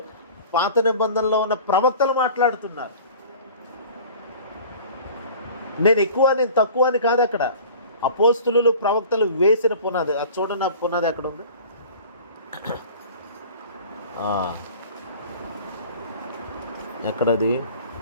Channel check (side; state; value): both; inverted; correlation -0.43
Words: పాత నిబంధనలో ఉన్న ప్రవక్తలు మాట్లాడుతున్నారు. నేను ఎక్కువ, నేను తక్కువ అని కాదు. అక్కడ అపోస్తులు, ప్రవక్తలు వేసిన పునాది. అది చూడండి, ఆ పునాది ఎక్కడ ఉంది? ఎక్కడది?